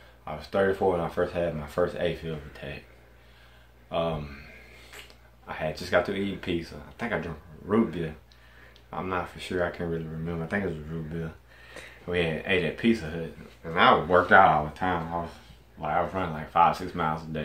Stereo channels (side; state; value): both; identical; correlation 1.00